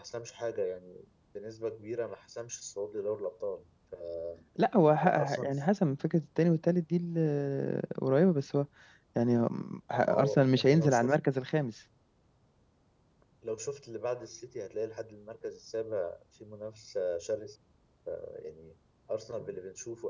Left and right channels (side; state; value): both; identical; correlation 1.00